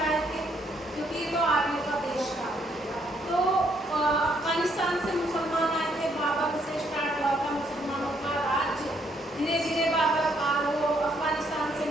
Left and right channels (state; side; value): normal; both; correlation 0.71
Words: आए थे क्योंकि ये तो आर्य का देश था। तो अफगानिस्तान से मुसलमान आए थे, बाबर से स्टार्ट हुआ था मुसलमानों का राज्य। धीरे धीरे बाबर वो अफगानिस्तान से